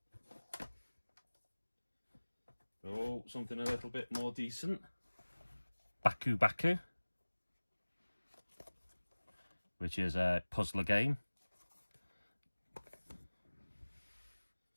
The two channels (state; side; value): inverted; both; correlation -1.00